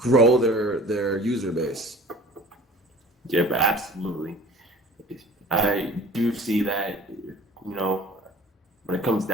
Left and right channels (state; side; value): normal; both; correlation 0.46